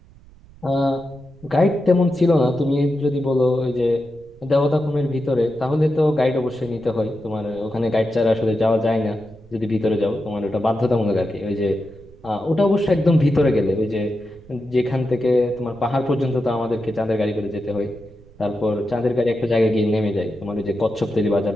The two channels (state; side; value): noise; right; rumble, 24 dB below the sound